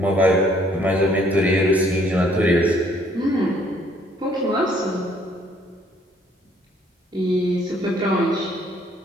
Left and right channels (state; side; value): normal; both; correlation 0.64